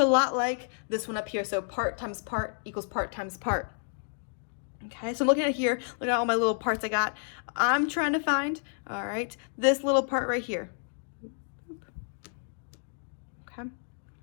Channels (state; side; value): silent; right; digital silence